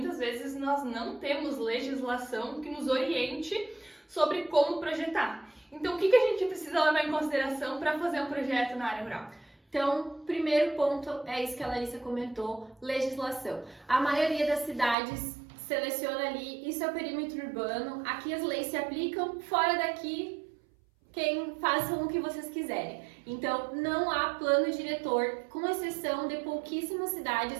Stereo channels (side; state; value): left; drops out; at 15.0 s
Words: vezes nós não temos legislação que nos oriente sobre como projetar. Então, o que a gente precisa levar em consideração para fazer um projeto na área rural? Então, primeiro ponto é isso que a Larissa comentou, legislação. A maioria das cidades seleciona ali, isso é o perímetro urbano, aqui as leis se aplicam, fora daqui quem façam o que vocês quiserem. Então, não há plano diretor, com exceção de pouquíssimas